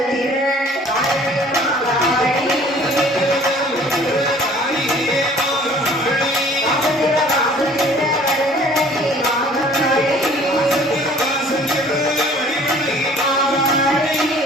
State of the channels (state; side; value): normal; both; correlation 0.52